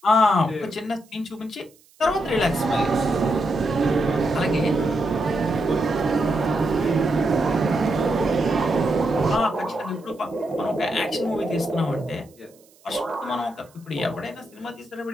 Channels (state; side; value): noise; right; hiss, 30 dB below the sound